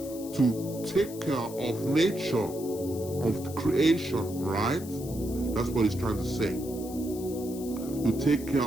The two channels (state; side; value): noise; left; hiss, 15 dB below the sound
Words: to take care of nature, of the creation, right? That's what he's trying to say. To take care